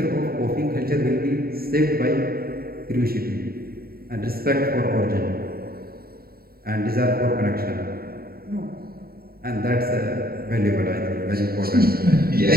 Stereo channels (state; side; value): late; left; 0.44 ms